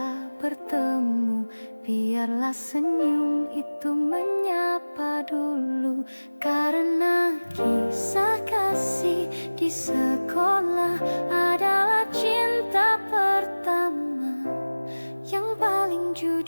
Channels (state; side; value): inverted; both; correlation -1.00